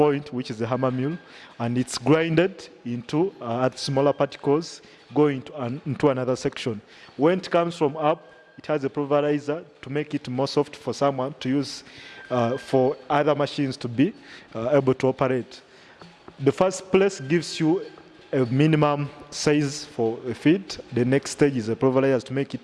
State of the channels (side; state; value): both; identical; correlation 1.00